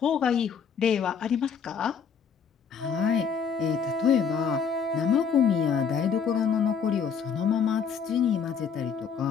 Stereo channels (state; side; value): quieter; right; 6.6 dB